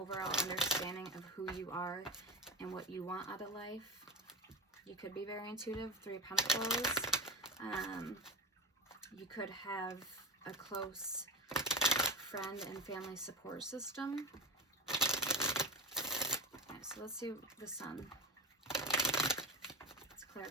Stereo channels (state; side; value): normal; both; correlation 0.26